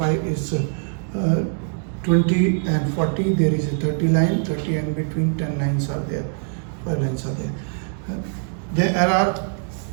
is 20 and 40. There is a 30 line, 30 and between 10 lines are there. 5 lines are there. There are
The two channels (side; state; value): left; silent; 64 dB below the other